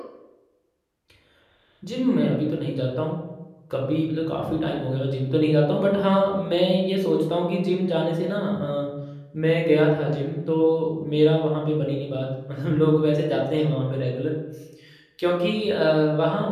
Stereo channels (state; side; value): identical; both; correlation 1.00